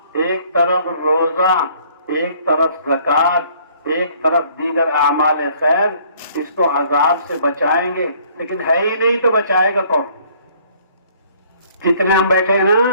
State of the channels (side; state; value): both; inverted; correlation -0.60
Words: ایک طرف روزہ، ایک طرف زکوٰۃ، ایک طرف دیگر اعمال خیر، اس کو عذاب سے بچائیں گے، لیکن ہے ہی نہیں تو بچائے گا کون؟ جتنے ہم بیٹھے ہیں